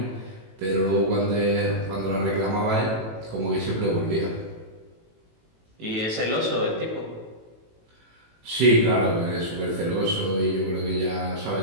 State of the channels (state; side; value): late; left; 18 ms